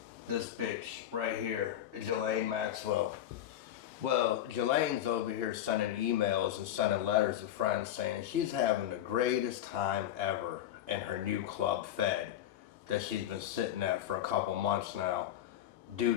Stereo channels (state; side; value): quieter; right; 11.6 dB